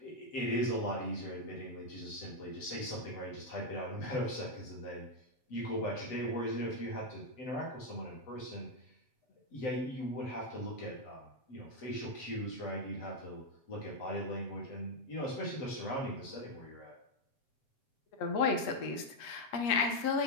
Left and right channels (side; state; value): right; late; 7.7 ms